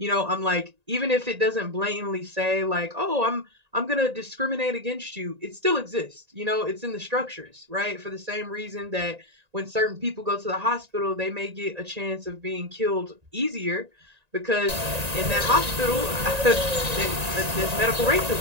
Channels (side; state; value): left; late; 1.9 ms